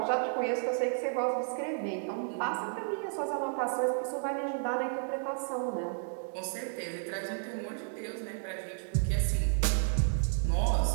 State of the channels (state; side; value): silent; left; digital silence